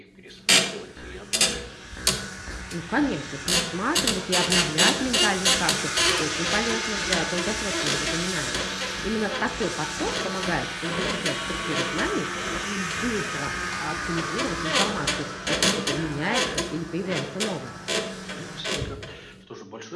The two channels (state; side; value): identical; both; correlation 1.00